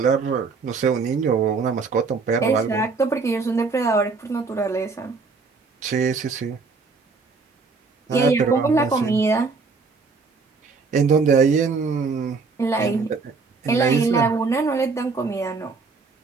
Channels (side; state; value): left; quieter; 4.5 dB